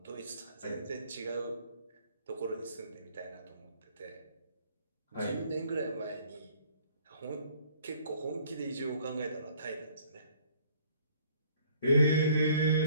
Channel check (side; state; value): both; inverted; correlation -0.59